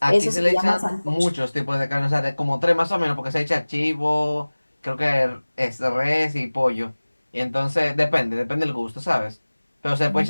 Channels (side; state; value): both; inverted; correlation -1.00